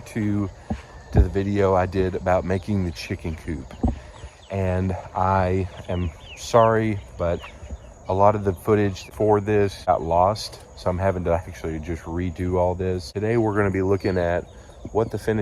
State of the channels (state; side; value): identical; both; correlation 1.00